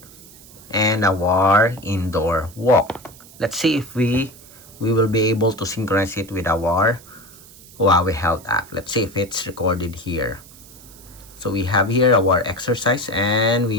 and our indoor walk. Let's see if we will be able to synchronize it with our Huawei Health app. Let's see if it's recorded here. So we have here our exercise, and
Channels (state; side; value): noise; right; hiss, 21 dB below the sound